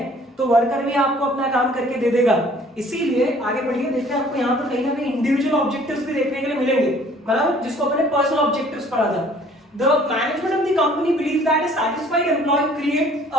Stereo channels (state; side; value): normal; both; correlation 0.55